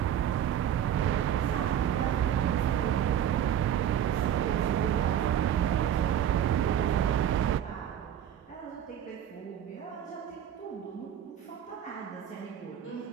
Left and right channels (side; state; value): left; quieter; 10.0 dB